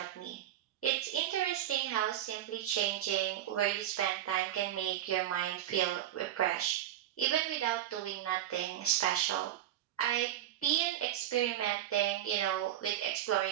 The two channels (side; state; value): left; quieter; 12.1 dB